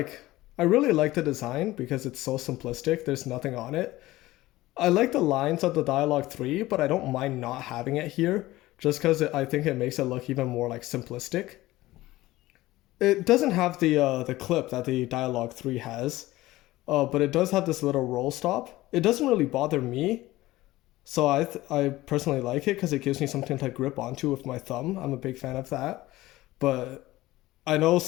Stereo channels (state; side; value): quieter; right; 17.6 dB